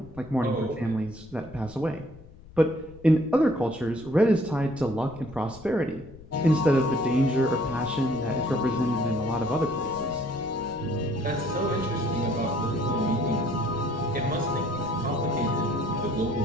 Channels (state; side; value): noise; left; rumble, 20 dB below the sound